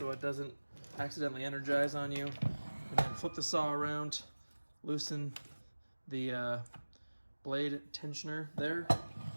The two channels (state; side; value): inverted; both; correlation -1.00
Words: it doesn't accidentally energize on you. And then flip the saw around, loosen the blade tensioner there.